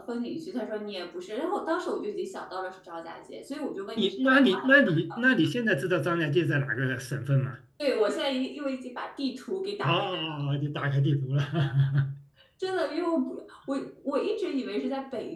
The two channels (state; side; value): identical; both; correlation 1.00